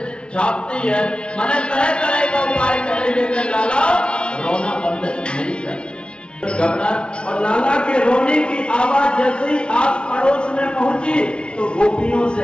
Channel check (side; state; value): right; late; 0.057 ms